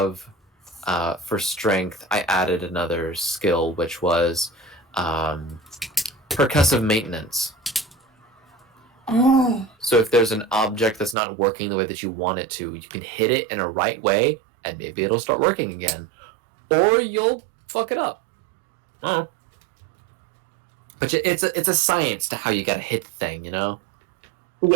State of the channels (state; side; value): drops out; left; at 11.2 s